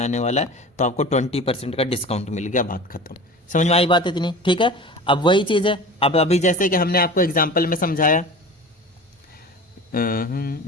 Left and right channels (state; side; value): normal; both; correlation 0.36